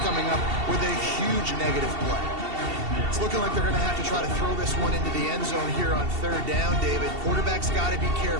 up with a huge negative play. It's looking like they're going to have to try to throw this one into the end zone here on 3rd down, David. Quarterback's got to be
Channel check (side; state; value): left; late; 2.7 ms